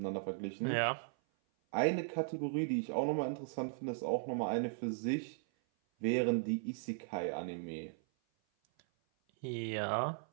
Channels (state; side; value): silent; left; 53 dB below the other